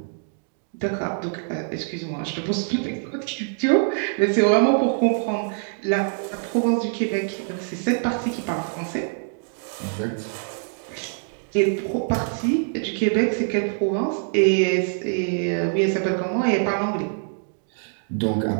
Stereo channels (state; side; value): silent; left; 60 dB below the other